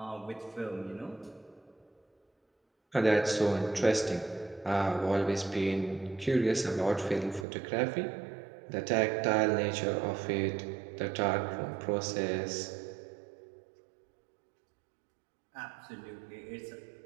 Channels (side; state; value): left; drops out; at 7.5 s